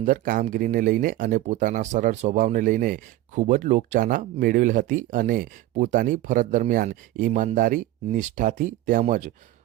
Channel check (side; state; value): left; quieter; 15.2 dB